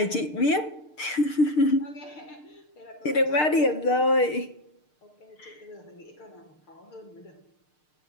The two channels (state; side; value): late; right; 6.6 ms